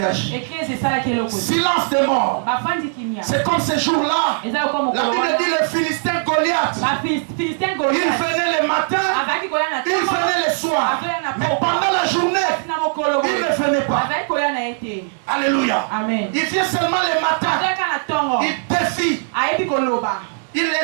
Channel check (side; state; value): left; silent; digital silence